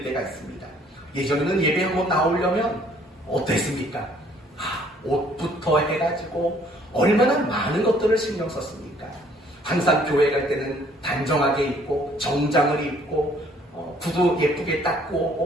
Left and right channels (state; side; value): normal; both; correlation 0.61